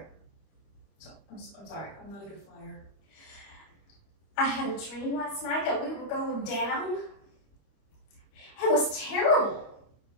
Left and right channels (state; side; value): late; right; 25 ms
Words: I'm sorry, I'm not a good flyer. I had a dream last night that we were going down. It was terrible.